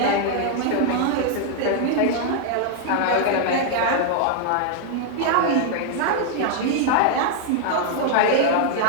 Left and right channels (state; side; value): different; both; correlation -0.01